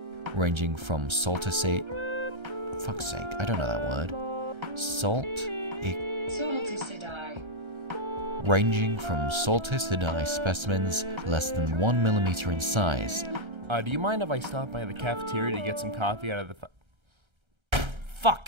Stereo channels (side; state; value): left; late; 1.3 ms